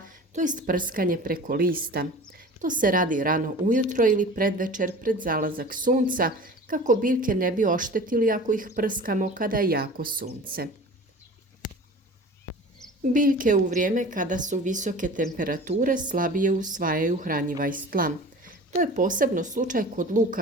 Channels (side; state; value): both; normal; correlation 0.39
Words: to jest prskanje preko lista. To se radi rano ujutro ili predvečer pred zalazak sunca kako biljke ne bi oštetili ako ih prskamo kada je jako sunce. Biljke u vrijeme kada su visoke temperature slabije usvajaju hranjiva iz tla. To je posebno slučaj kod